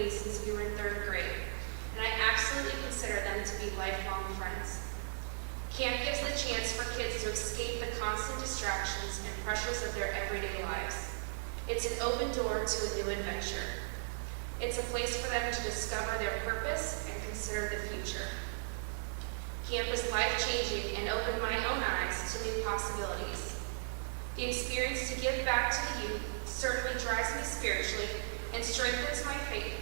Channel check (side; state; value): left; silent; 53 dB below the other